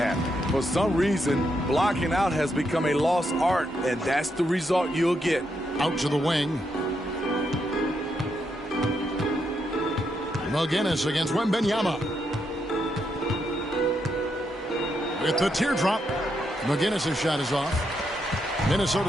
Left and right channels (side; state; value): both; normal; correlation 0.80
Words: For some reason, blocking out has become a lost art, and that's the result you'll get. Out to the wing. McGinnis against Wembanyama. With the teardrop. McGinnis' shot is off.